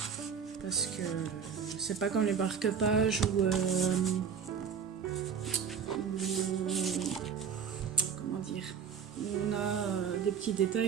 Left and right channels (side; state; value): left; quieter; 7.0 dB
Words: c'est pas comme les marque-pages ou comment dire, on a des petits